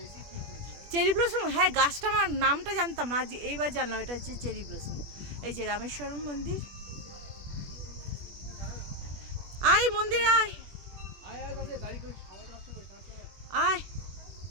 চেরি ব্লসম, হ্যাঁ গাছটা আমার নামটা জানতাম না, আজ এইবার জানলাম এটা হচ্ছে চেরি ব্লসম। এই যে রামেশ্বরম মন্দির। আয় মন্দির আয় আয়।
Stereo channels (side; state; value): left; late; 21 ms